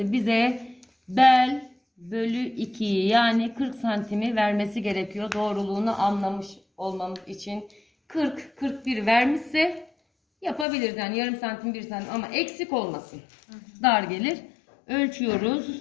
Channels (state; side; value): drops out; right; at 10.7 s